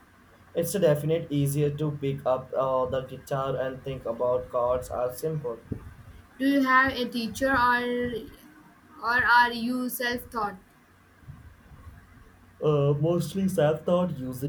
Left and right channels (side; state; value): both; identical; correlation 1.00